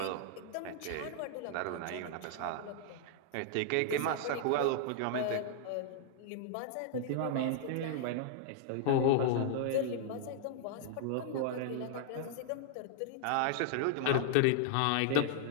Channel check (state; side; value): different; both; correlation -0.01